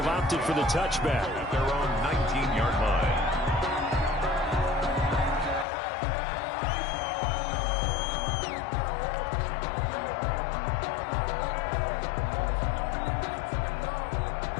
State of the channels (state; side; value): drops out; right; at 5.7 s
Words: opted for the touchback. At their own 19-yard line.